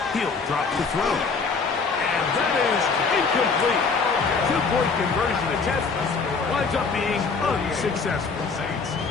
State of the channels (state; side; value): quieter; right; 4.8 dB